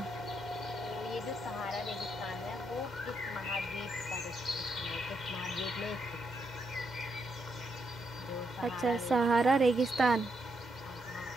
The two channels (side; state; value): both; normal; correlation 0.79